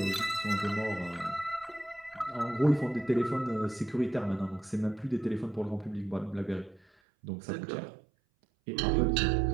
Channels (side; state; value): left; drops out; at 6.9 s